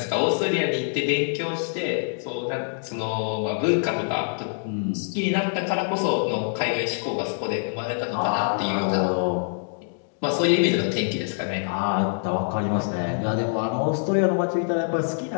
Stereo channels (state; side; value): silent; right; digital silence